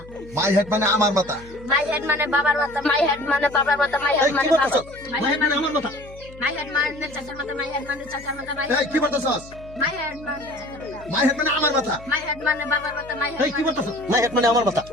মাই হেড মানে আমার মাথা। my head মানে বাবার মাথা, my head মানে বাবার মাথা, my এই head কি মানে বলতেছস? my মাই head হেড মানে আমার মাথা। my head মানে চাচার মাথা, my head মানে চাচার মাথা, my এই কি বলতেছস? head মানে চাচার মাথা, মাই হেড মানে আমার মাথা। my head মানে বাবার মাথা, my এই কি বলতেছস? মাই হেড মানে আমার মাথা।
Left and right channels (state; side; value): noise; left; hum, 19 dB below the sound